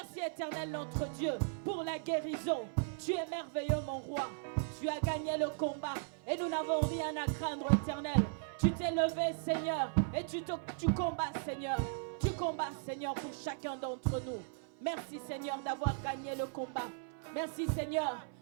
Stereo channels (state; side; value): silent; left; 53 dB below the other